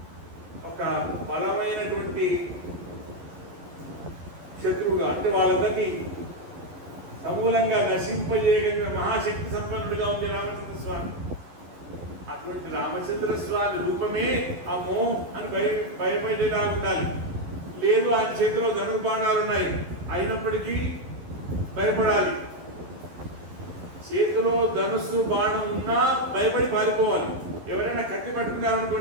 ఒక బలమైనటువంటి శత్రువుగా, అంటే వాళ్ళందరినీ సమూలంగా నశింపజేయగలిగిన మహాశక్తి సంపన్నుడిగా ఉంది రామచంద్ర స్వామి. అటువంటి రామచంద్ర స్వామి రూపమే అమ్మో అని భయపడేలా ఉండాలి. లేదు ఆయన చేతిలో ధనుర్బాణాలు ఉన్నాయి, అయినప్పటికీ భయపడాలి. చేతిలో ధనుస్సు బాణం ఉన్నా భయపడి పారిపోవాలి. ఎవరైనా కత్తి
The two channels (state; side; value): late; left; 11 ms